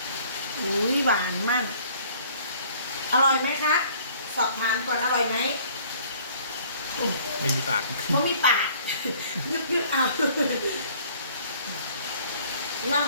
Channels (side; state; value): both; inverted; correlation -0.56